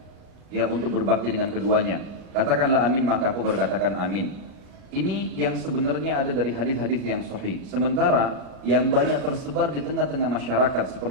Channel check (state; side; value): late; left; 36 ms